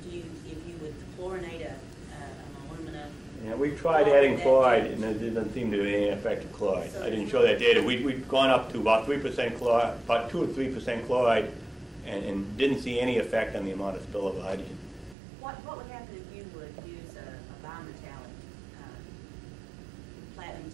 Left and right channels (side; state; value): left; drops out; at 15.2 s